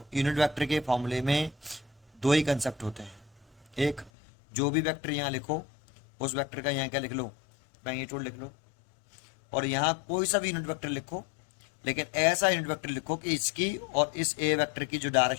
यूनिट वेक्टर के फॉर्मूले में दो ही कंसेप्ट होते हैं, एक जो भी वेक्टर यहाँ लिखो उस वेक्टर का यहाँ क्या लिख लो, मैग्नीट्यूड लिख लो, और यहाँ कोई सा भी यूनिट वेक्टर लिखो लेकिन ऐसा यूनिट वेक्टर लिखो कि इसकी और इस ए वेक्टर की जो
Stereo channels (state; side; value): drops out; right; at 4.1 s